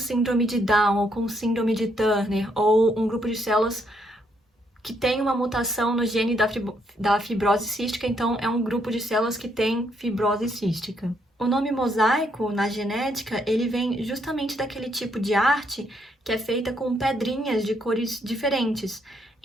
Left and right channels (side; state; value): both; normal; correlation 0.73